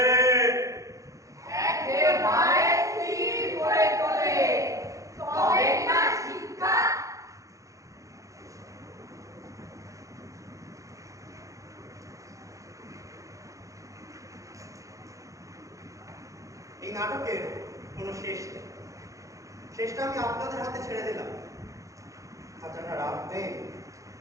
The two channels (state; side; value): late; left; 0.16 ms